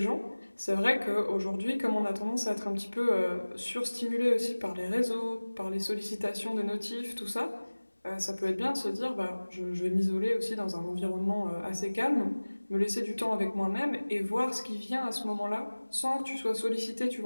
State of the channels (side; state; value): both; inverted; correlation -1.00